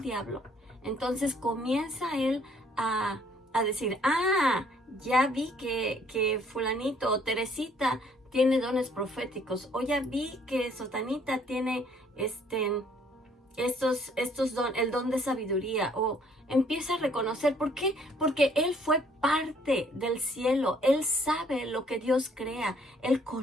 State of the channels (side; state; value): both; normal; correlation 0.62